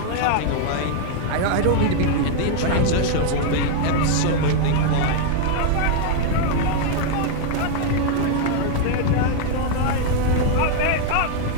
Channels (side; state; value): both; different; correlation 0.00